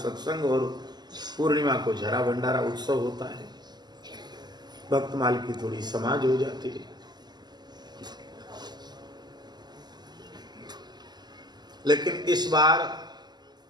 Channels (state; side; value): late; left; 0.21 ms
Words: सत्संग और पूर्णिमा को झरा भंडारा उत्सव होता है। भक्तमाल की थोड़ी समाज हो जाती है। लेकिन इस बार